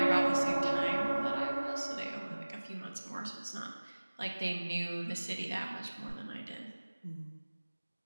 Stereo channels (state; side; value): inverted; both; correlation -1.00